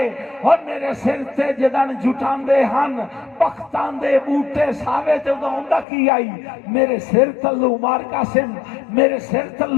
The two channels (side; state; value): right; drops out; at 5.9 s